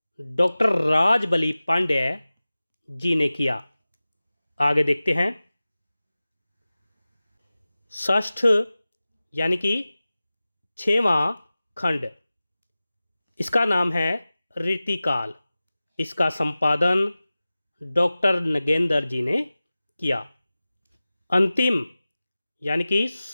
डॉक्टर राजबली पांड्य जी ने किया। आगे देखते हैं। षष्ठ यानी कि 6वां खंड, इसका नाम है रीतिकाल। इसका संपादन डॉक्टर नगेंद्र जी ने किया। अंतिम यानी कि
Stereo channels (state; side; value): inverted; both; correlation -0.97